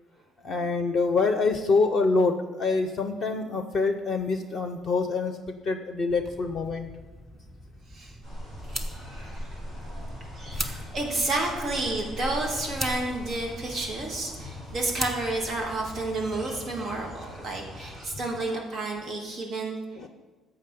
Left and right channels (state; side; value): normal; both; correlation 0.69